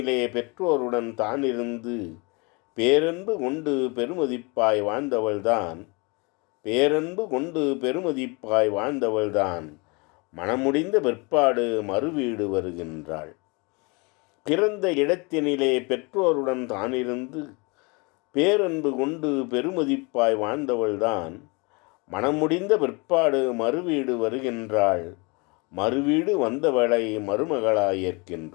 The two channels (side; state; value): right; quieter; 29.0 dB